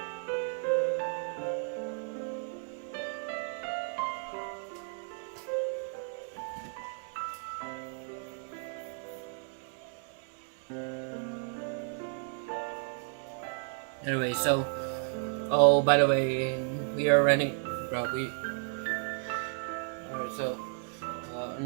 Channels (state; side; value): silent; left; 56 dB below the other